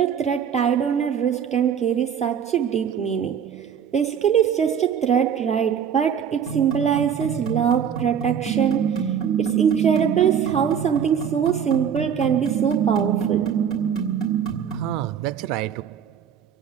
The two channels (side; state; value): left; quieter; 8.0 dB